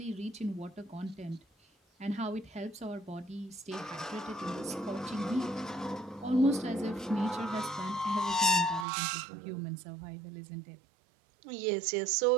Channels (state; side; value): drops out; left; at 8.8 s